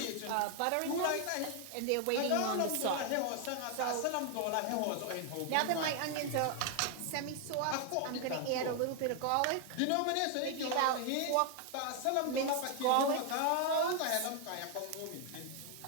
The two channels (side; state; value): both; different; correlation 0.00